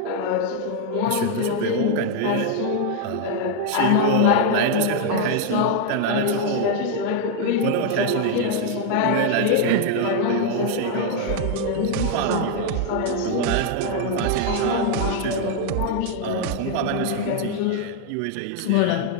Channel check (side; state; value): both; different; correlation 0.00